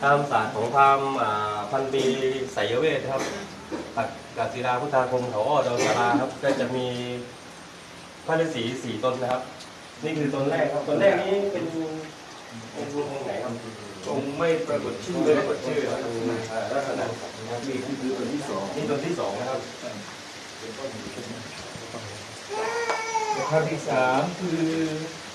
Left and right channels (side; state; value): both; identical; correlation 1.00